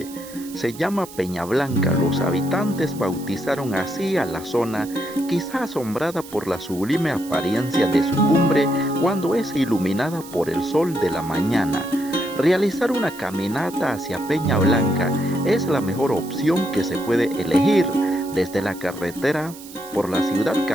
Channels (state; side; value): noise; right; hiss, 17 dB below the sound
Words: se llama Peña Blanca. Los habitantes bautizaron así a la zona, quizá asombrada por la sublime apariencia de su cumbre cuando es iluminada por el sol de la mañana. Realizar una caminata hacia Peña Blanca es la mejor opción que se puede elegir desde la carretera por la ciudad